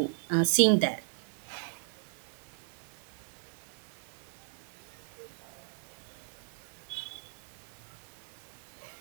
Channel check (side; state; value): left; silent; digital silence